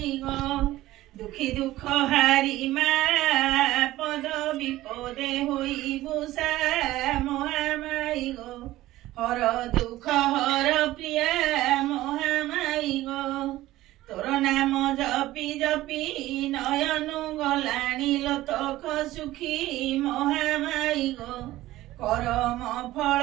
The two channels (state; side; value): quieter; left; 16.2 dB